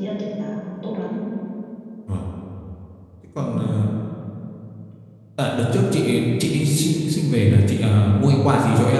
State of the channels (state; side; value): identical; both; correlation 1.00